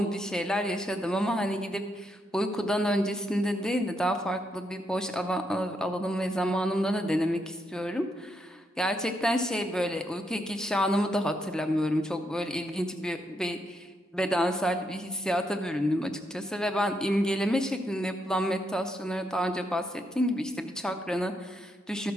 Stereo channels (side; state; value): both; normal; correlation 0.78